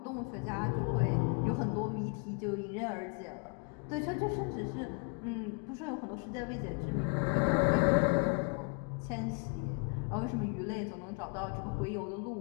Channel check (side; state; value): right; quieter; 39.4 dB